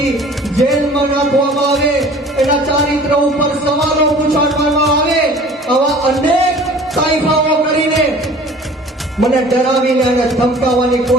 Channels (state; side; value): normal; both; correlation 0.47